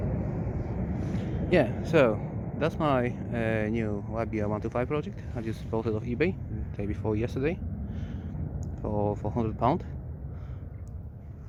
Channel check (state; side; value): identical; both; correlation 1.00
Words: Yeah, so that's my new YBR 125 project. I just bought it off eBay the day before yesterday for £100.